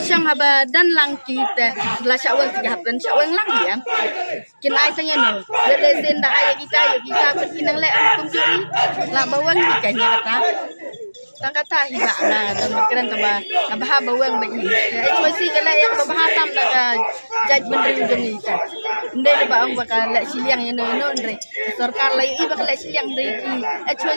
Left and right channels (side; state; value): both; inverted; correlation -1.00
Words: syang haba dan lang kita la syawang tiga dan syawang lang ya kin ai tanya no le sin da ay kita kinang le ang tunjuri la bawang ni kanya kata tang kata hiba na dan keren taba kabaha bawang bagi itu sih kala yang kabaha tam da jaj menteri ujung ni kan ndai ba ang bakal le siliang ya no ndai sarkar lai i bakal le siliang ndai ki